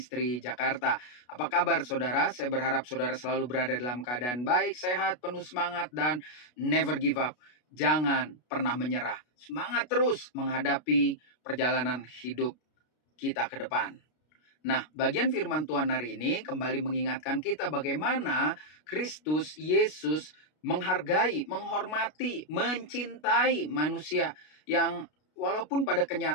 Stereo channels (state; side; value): late; right; 33 ms